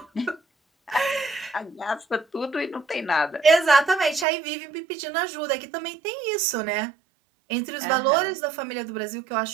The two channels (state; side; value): drops out; left; at 4.2 s